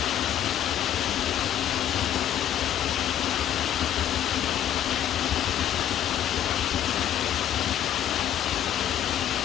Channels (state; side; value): quieter; right; 10.7 dB